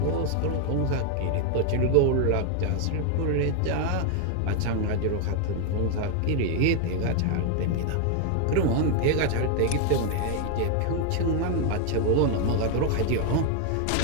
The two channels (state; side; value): different; both; correlation 0.01